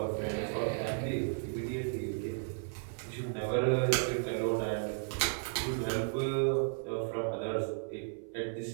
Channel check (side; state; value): left; silent; 55 dB below the other